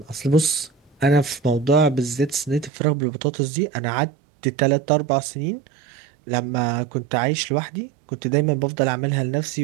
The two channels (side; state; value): left; drops out; at 2.7 s